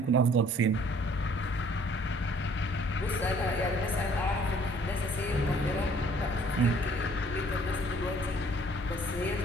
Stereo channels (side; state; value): both; normal; correlation 0.58